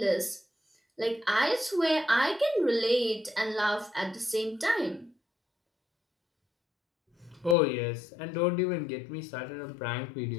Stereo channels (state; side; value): drops out; right; at 7.6 s